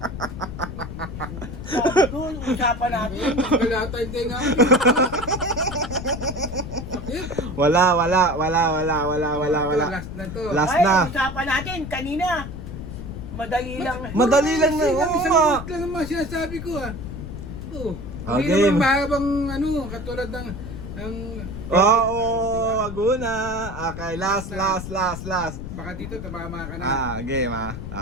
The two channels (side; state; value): left; noise; rumble, 9 dB below the sound